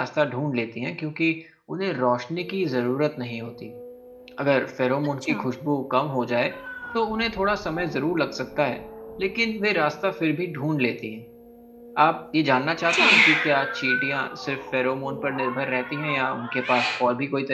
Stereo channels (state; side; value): identical; both; correlation 1.00